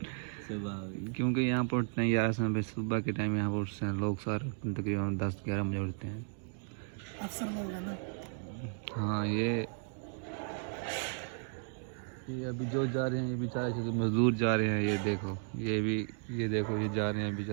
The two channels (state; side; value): silent; left; 55 dB below the other